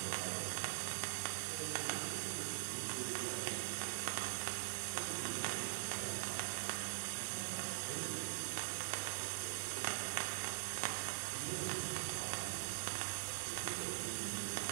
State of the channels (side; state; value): left; silent; digital silence